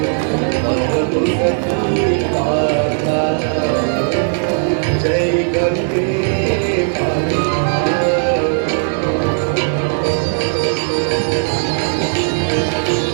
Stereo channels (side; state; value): left; silent; digital silence